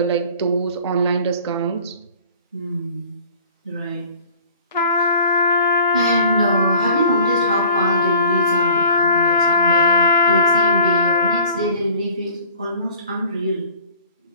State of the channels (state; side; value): inverted; both; correlation -0.49